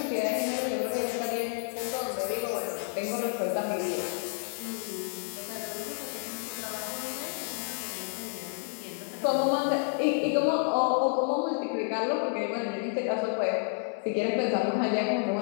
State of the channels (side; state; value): right; silent; 58 dB below the other